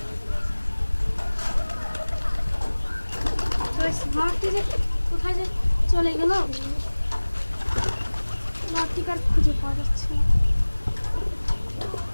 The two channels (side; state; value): both; inverted; correlation -1.00